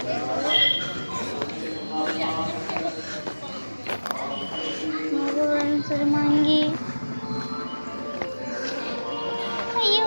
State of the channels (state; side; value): inverted; both; correlation -1.00